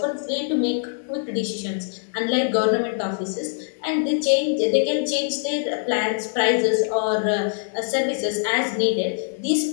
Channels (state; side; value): silent; right; digital silence